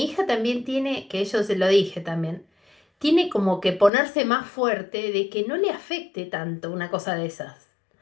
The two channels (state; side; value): drops out; right; at 3.9 s